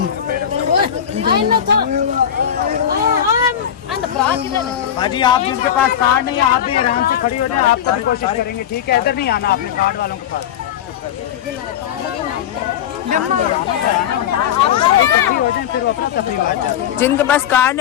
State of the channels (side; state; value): right; quieter; 9.5 dB